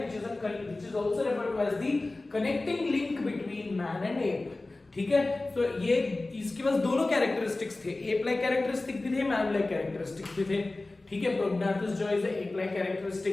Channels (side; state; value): right; quieter; 3.1 dB